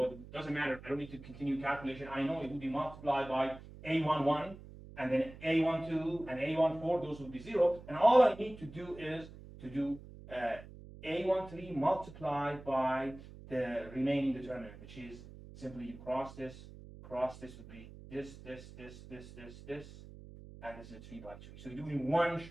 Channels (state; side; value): noise; right; hum, 16 dB below the sound